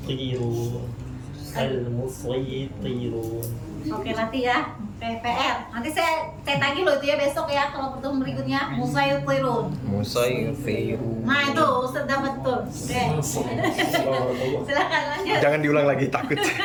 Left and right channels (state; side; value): identical; both; correlation 1.00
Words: Oke, nanti ya. PR. Nanti saya tagih loh itu ya besok ya kalau pertemuan berikutnya. Musaytirun. Nah itu Ustaz dapat tuh. Oke. Silakan lanjut. Jangan diulang lagi, takut.